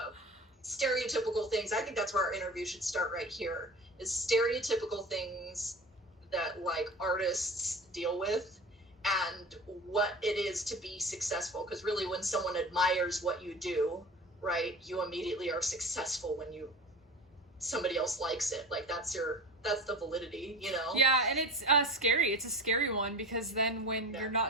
stereotypical things. I think that's where our interview should start right here, is stereotypical things that like artists deal with and what it is to be successful. Because really when someone admires what you do, right, you immediately are successful when somebody else likes it. Like that's the validity, you know? Yeah, and it's scary. It's a scary one, because then when you're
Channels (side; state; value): both; normal; correlation 0.34